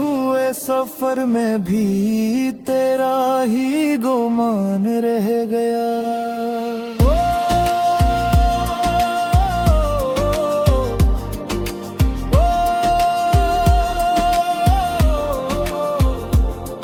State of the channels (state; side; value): identical; both; correlation 1.00